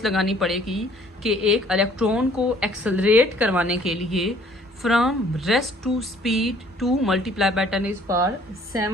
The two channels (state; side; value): normal; both; correlation 0.58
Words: लगानी पड़ेगी कि एक इलेक्ट्रॉन को एक्सेलरेट करवाने के लिए from rest to speed 2 multiply by